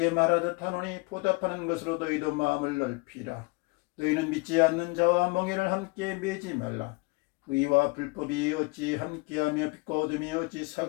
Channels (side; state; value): right; quieter; 27.6 dB